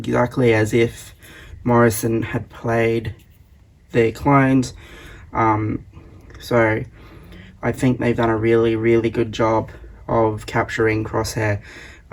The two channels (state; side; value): identical; both; correlation 1.00